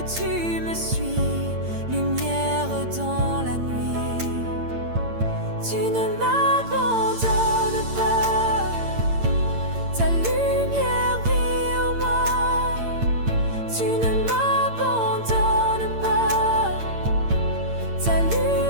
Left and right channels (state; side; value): late; left; 8.8 ms